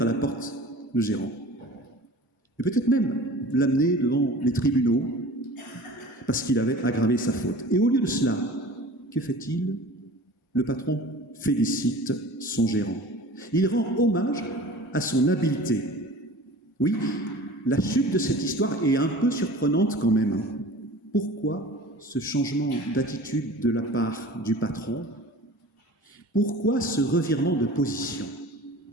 à la porte le gérant. Et peut-être même l'amener devant les tribunaux, parce qu'il avait aggravé sa faute. Et au lieu de cela, que fait-il ? Le patron félicite son gérant. Il rend hommage à son habileté. Oui, la chute de cette histoire est un peu surprenante quand même. Pourquoi ce changement d'attitude de la part du patron ? Pourquoi ce revirement de position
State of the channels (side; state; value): both; normal; correlation 0.41